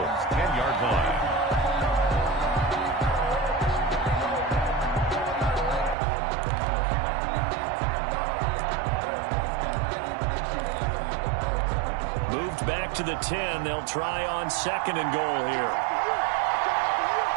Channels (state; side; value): drops out; left; at 6.0 s